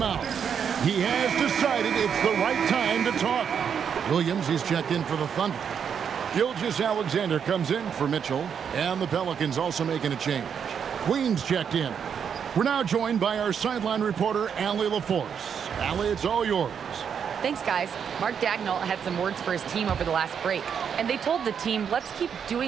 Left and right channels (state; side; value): quieter; left; 7.4 dB